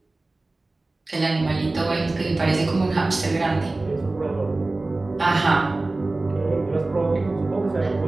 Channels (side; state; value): left; quieter; 3.1 dB